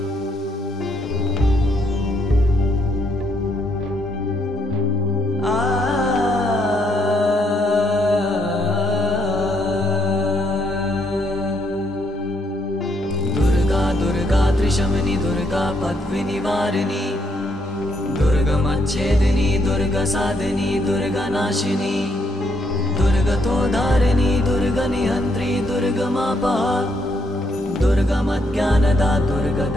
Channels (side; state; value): both; normal; correlation 0.74